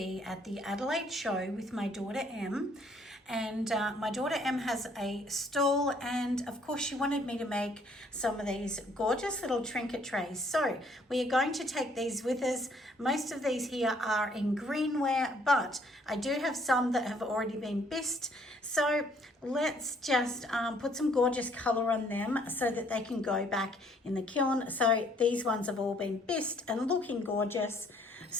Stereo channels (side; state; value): both; normal; correlation 0.64